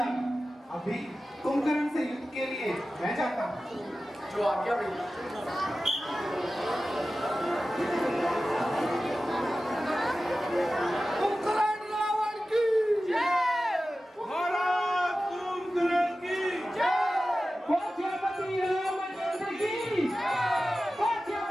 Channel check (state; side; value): normal; both; correlation 0.95